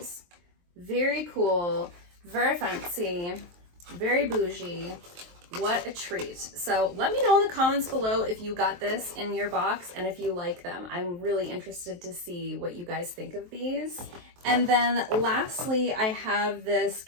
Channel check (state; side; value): late; left; 23 ms